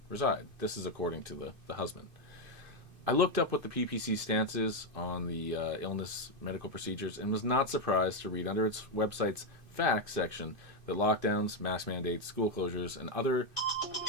reside. This is according to the husband. I looked up what the PPC stance is on the illness medical procedures and was not surprised to read under its website's facts section that lockdowns, mask mandates, school closures, and other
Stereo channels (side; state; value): left; late; 2.5 ms